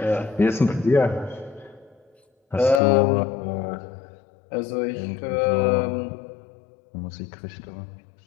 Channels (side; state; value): right; drops out; at 2.8 s